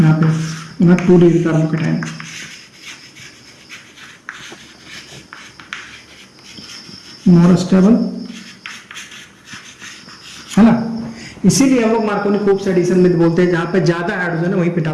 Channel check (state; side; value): identical; both; correlation 1.00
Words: पे 2 डिग्री कार्बोकेटाइन, मोर स्टेबल, है ना। इसीलिए हम लोग मार्कोनिकोव्स एडिशन में बोलते हैं जहां पे ज्यादा हाइड्रोजन है वहीं पे